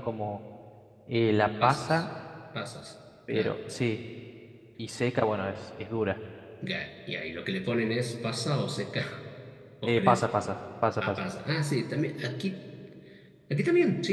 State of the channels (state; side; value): identical; both; correlation 1.00